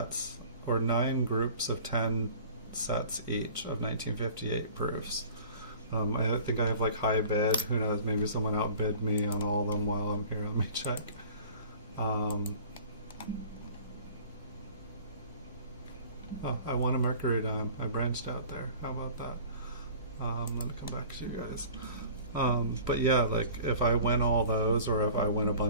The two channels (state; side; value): inverted; both; correlation -0.46